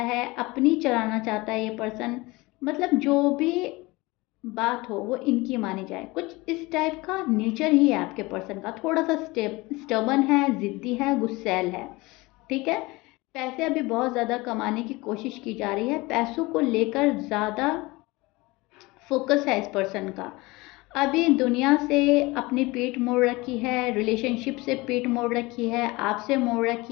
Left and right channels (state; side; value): quieter; right; 22.5 dB